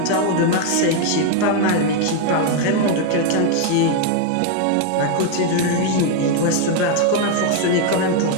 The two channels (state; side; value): different; both; correlation 0.00